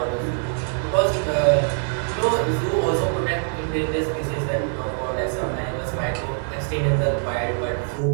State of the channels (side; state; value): left; silent; 55 dB below the other